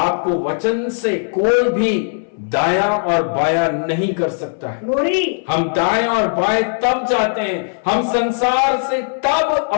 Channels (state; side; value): silent; right; 62 dB below the other